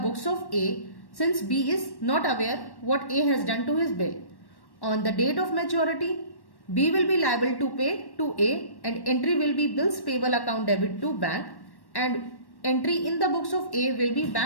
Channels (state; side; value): late; right; 1.1 ms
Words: of A, since B is not aware what A has done to his bill. On the date of maturity, B will be liable to pay to A and entry will be bills payable account debit to bank, and entry in the books of A will be